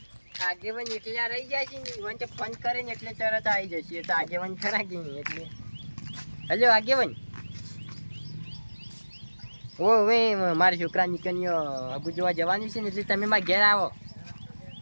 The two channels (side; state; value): both; inverted; correlation -1.00